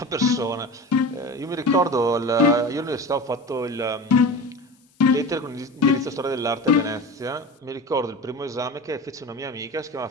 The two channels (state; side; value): normal; both; correlation 0.32